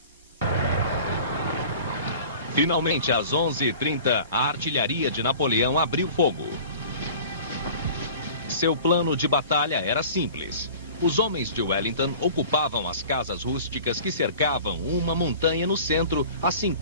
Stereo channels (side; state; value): both; inverted; correlation -0.43